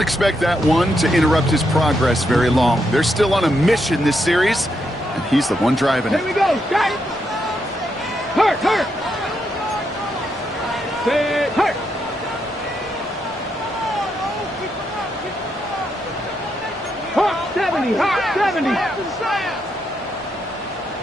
that one to interrupt his progress very long. They're still on a mission this series, and he's the one driving it. Here we go, guys. Hurt. Set, hurt. Hawk 70.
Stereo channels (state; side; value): normal; both; correlation 0.80